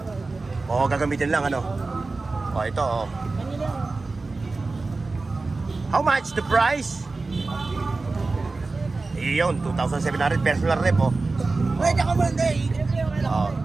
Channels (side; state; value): left; quieter; 3.6 dB